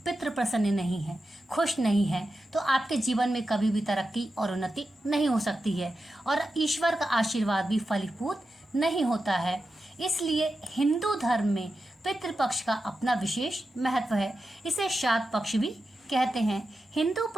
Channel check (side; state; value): both; normal; correlation 0.90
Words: पितृ प्रसन्न नहीं है, खुश नहीं है, तो आपके जीवन में कभी भी तरक्की और उन्नति नहीं हो सकती है और ईश्वर का आशीर्वाद भी फलीभूत नहीं होता है। इसलिए हिंदू धर्म में पितृपक्ष का अपना विशेष महत्व है। इसे श्राद्ध पक्ष भी कहते हैं। हिंदू